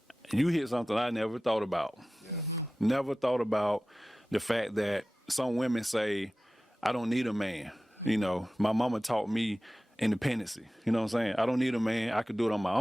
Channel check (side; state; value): both; normal; correlation 0.95